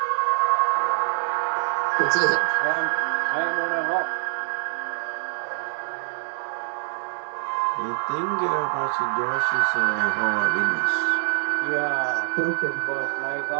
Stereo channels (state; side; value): silent; left; digital silence